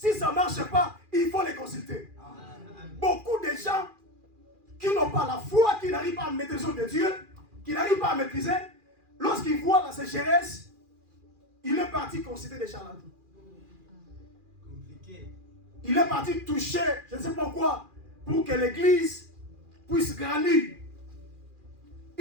ça ne marche pas, il faut les consulter. Beaucoup de gens qui n'ont pas la foi, qui n'arrivent pas à maîtriser de Dieu, qui n'arrivent pas à maîtriser, lorsqu'ils voient la sécheresse, il est parti consulter des charlatans. Il est parti toucher, je ne sais pas quoi, pour que l'église puisse grandir.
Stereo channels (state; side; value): late; left; 2.4 ms